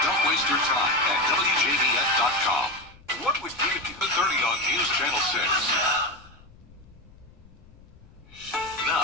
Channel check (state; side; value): noise; left; rumble, 24 dB below the sound